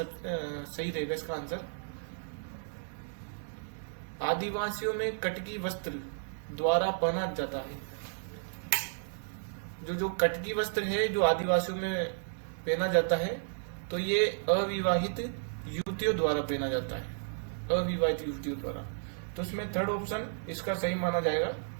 रहेगा इसका आंसर। आदिवासियों में कटकी वस्त्र द्वारा पहना जाता है। जो कटकी वस्त्र है जो आदिवासियों में पहना जाता है, तो ये अविवाहित युवतियों द्वारा पहना जाता है, अविवाहित युवतियों द्वारा। तो इसमें थर्ड ऑप्शन इसका सही माना जाएगा।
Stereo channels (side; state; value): left; silent; digital silence